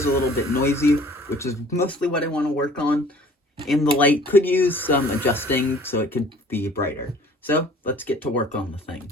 a little bit noisy, which is mostly what I want to work on. And the light could use some adjusting, so it could be brighter. So, let's get to work on the thing.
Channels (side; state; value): both; normal; correlation 0.51